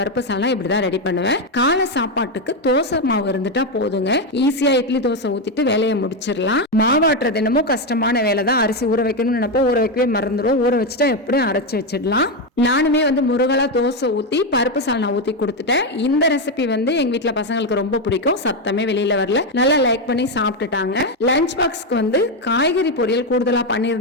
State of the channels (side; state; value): both; normal; correlation 0.07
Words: சால்னா இப்படிதான் ரெடி பண்ணுவேன். காலை சாப்பாட்டுக்கு தோசை மாவு இருந்துட்டா போதுங்க. ஈஸியா இட்லி தோசை ஊத்திட்டு வேலையை முடிச்சிடலாம். மாவாட்டுறது என்னமோ கஷ்டமான வேலை தான். அரிசி ஊற வைக்கணும்னு நினைப்போ ஊற வைக்கவே மறந்துடும். ஊற வச்சுட்டா எப்படியும் அரைச்சு வச்சிடலாம். நானுமே வந்து முருகலா தோசை ஊத்தி பருப்பு சால்னா ஊத்தி கொடுத்துட்டேன். இந்த ரெசிபி வந்து எங்க வீட்டுல பசங்களுக்கு ரொம்ப பிடிக்கும். சத்தமே வெளியில வரல, நல்லா லைக் பண்ணி சாப்பிட்டுட்டாங்க. லஞ்ச் பாக்ஸ்க்கு வந்து காய்கறி பொரியல் கூடுதலா